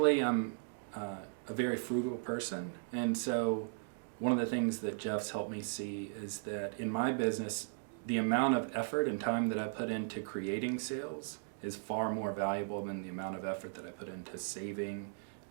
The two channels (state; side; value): silent; left; digital silence